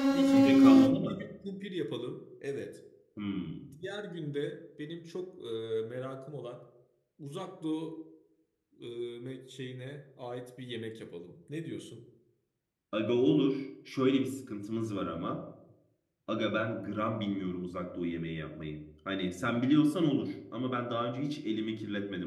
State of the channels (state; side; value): identical; both; correlation 1.00